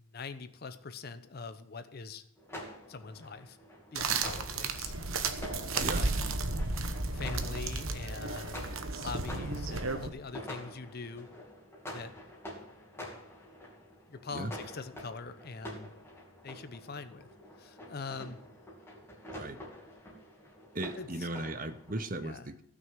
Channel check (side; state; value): both; normal; correlation 0.39